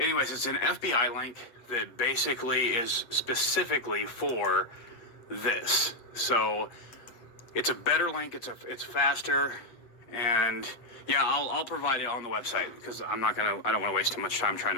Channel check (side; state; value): right; late; 8.4 ms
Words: it's an FBI link that basically is specifically for this. So It's a better link. It's faster, and yeah, I'll provide it on the website because I don't want to waste too much time trying